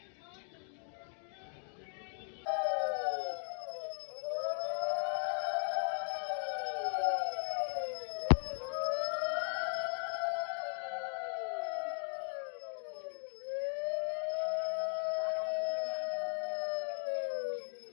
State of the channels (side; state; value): right; silent; 53 dB below the other